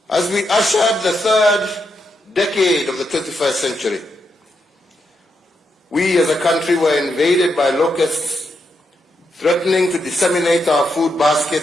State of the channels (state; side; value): normal; both; correlation 0.82